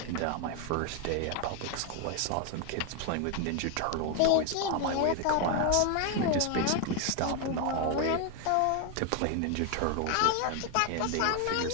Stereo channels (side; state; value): both; different; correlation 0.01